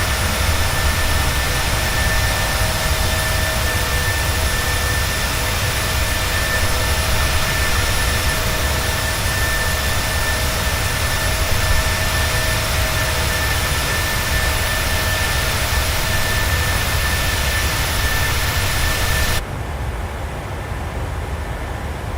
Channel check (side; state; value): both; identical; correlation 1.00